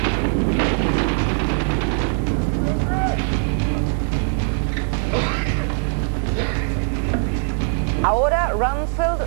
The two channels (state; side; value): silent; left; 65 dB below the other